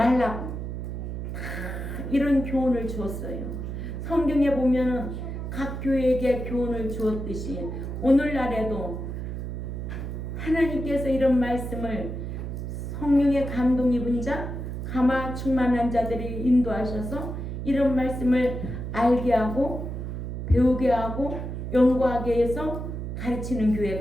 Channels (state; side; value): noise; right; hum, 5 dB below the sound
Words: 다 이런 교훈을 주었어요. 성경에 보면은 각 교회에게 교훈을 주었듯이 오늘날에도 하나님께서 이런 말씀을 성령의 감동 입은 자, 감화 충만한 자들이 인도하셔서 이런 말씀을 알게 하고 배우게 하고 연구하게 해서 가르치는